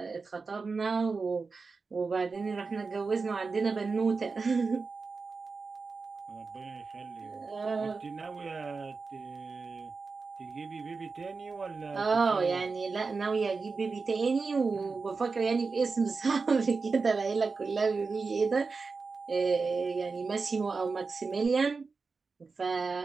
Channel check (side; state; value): left; quieter; 4.5 dB